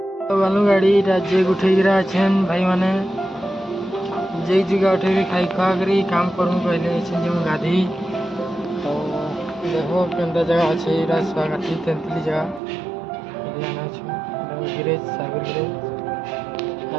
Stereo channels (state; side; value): drops out; left; at 12.6 s